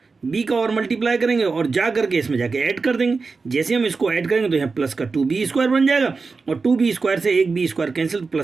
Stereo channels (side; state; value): left; quieter; 4.4 dB